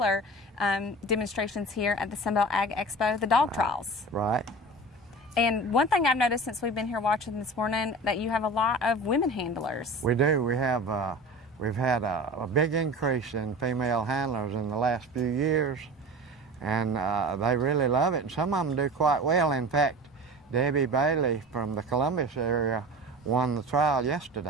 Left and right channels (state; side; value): normal; both; correlation 0.35